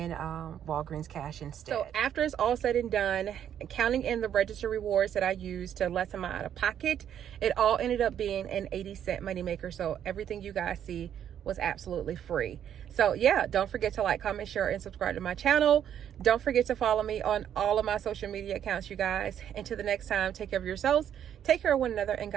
Walgreens cash instead. So after it's all said and done, counting in the register rewards that I used to lessen my out of pocket, it all ended up being an 80-cent moneymaker. So everything you guys see was absolutely free. So yeah, don't forget to like, comment, share, and subscribe to my channel. Don't forget to follow me on all of my social media accounts, you guys. Until the next time, take care of yourselves, take care of one another, and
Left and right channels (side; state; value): left; quieter; 9.6 dB